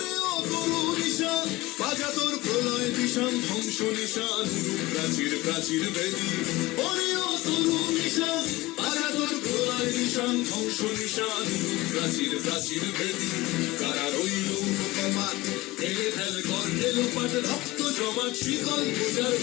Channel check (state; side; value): quieter; right; 20.0 dB